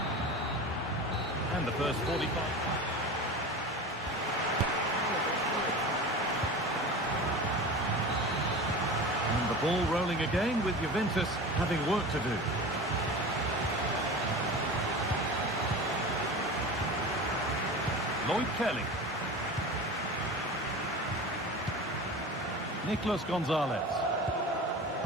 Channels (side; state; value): both; normal; correlation 0.32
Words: And the first 45. And the ball rolling again with Juventus having work to do. Lloyd Kelly. Nicolas Gonzalez.